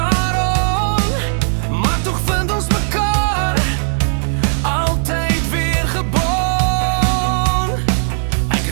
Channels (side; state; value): left; silent; digital silence